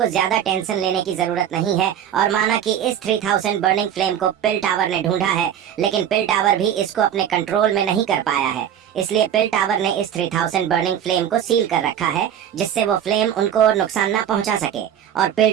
ज्यादा टेंशन लेने की जरूरत नहीं है, और माना कि इस 3000 बर्निंग फ्लेम को पिल टावर ने ढूंढा है, लेकिन पिल टावर भी इसको अपने कंट्रोल में नहीं कर पाया है। इसलिए पिल टावर ने इस 3000 बर्निंग फ्लेम को सील कर रखा है, जिससे वो फ्लेम उनको और नुकसान ना पहुंचा सके। और पिल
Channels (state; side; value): quieter; left; 9.7 dB